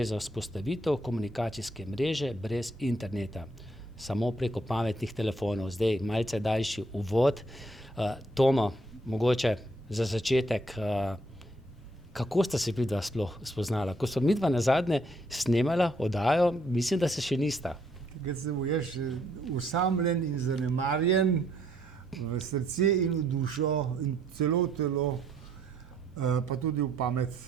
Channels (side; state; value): both; normal; correlation 0.69